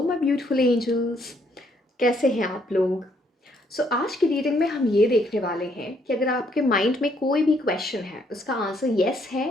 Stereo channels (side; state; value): both; normal; correlation 0.69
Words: my beautiful angels, कैसे हैं आप लोग। आज की रीडिंग में हम ये देखने वाले हैं कि अगर आपके माइंड में कोई भी क्वेश्चन है, उसका आंसर येस है